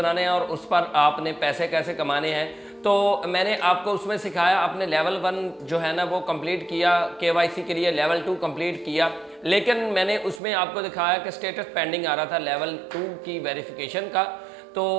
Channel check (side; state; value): left; drops out; at 10.4 s